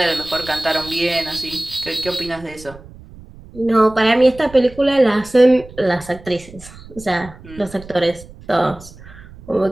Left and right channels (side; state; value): right; noise; rumble, 19 dB below the sound